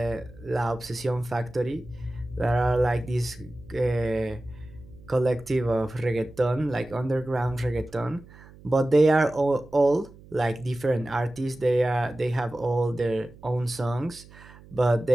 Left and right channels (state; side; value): noise; right; hum, 21 dB below the sound